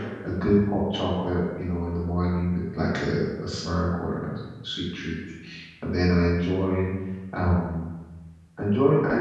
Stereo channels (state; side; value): identical; both; correlation 1.00